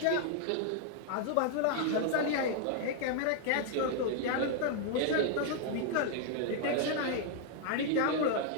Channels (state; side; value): different; both; correlation 0.00